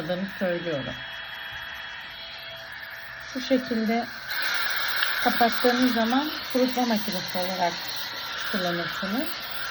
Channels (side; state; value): both; identical; correlation 1.00